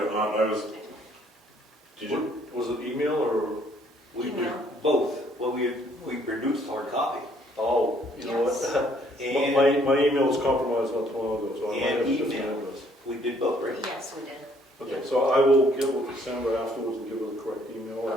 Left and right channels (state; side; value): normal; both; correlation 0.64